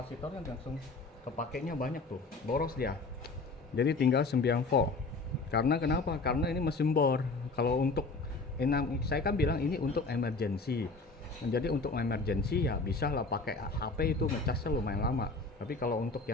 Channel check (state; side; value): quieter; right; 3.7 dB